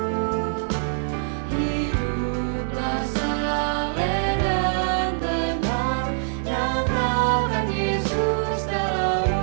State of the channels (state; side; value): silent; left; 58 dB below the other